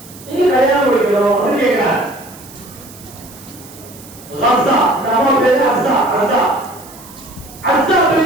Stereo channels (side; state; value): right; noise; hiss, 20 dB below the sound